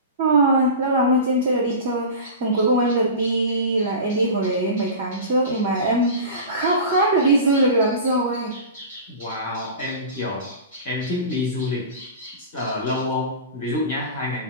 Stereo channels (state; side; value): inverted; both; correlation -0.31